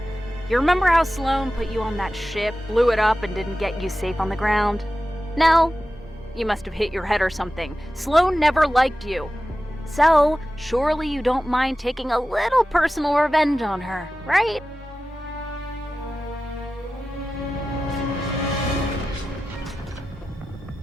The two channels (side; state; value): both; normal; correlation 0.94